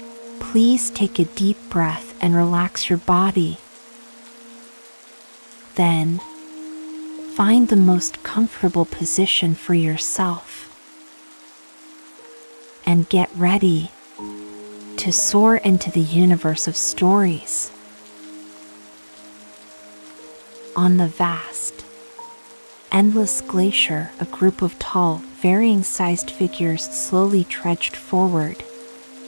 please take a deep breath and relax your body. Then, find the most comfortable position for yourself. And get ready to soar into the universe of stories. On the vast, endless glacier, a group of tall, varying-sized figures slowly trudged forward,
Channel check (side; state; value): both; inverted; correlation -1.00